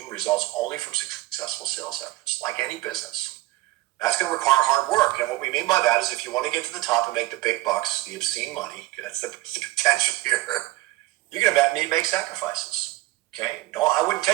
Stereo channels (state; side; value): quieter; left; 18.4 dB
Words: results only from successful sales efforts, like any business. That's going to require hard work. And what we mean by that is if you want to get to the top and make the big bucks, the obscene money, that's the potential here, you're going to need to make sacrifices. Okay? No, I wouldn't